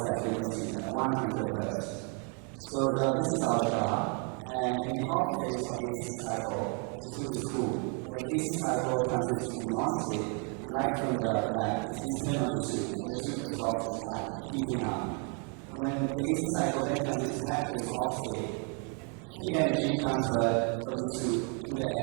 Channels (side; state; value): left; quieter; 37.9 dB